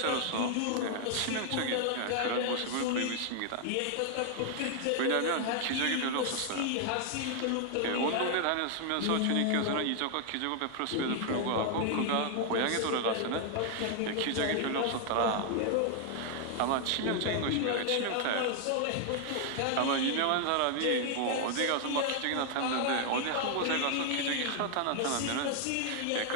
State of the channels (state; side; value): different; both; correlation 0.00